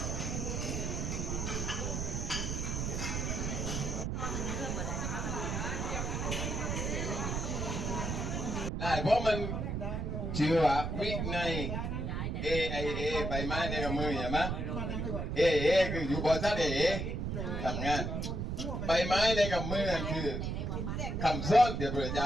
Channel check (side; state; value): right; noise; rumble, 2 dB below the sound